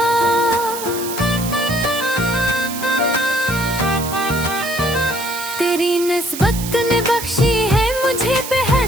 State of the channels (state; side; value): noise; right; hiss, 9 dB below the sound